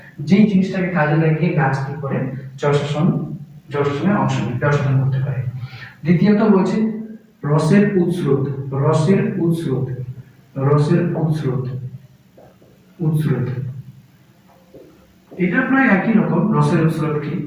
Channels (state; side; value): identical; both; correlation 1.00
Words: যেই জিনিসটাকে কাজে লাগিয়ে গাছ কি করে জল শোষণে অংশ নেয়, জল শোষণ করতে পারে। দ্বিতীয়ত বলছে রসের উৎস্রোত। এটা প্রায় একই রকম। রসের উৎস্রোত কি?